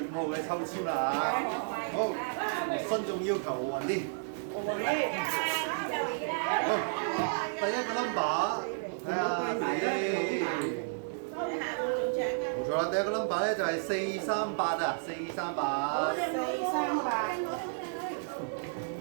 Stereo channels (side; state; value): left; silent; digital silence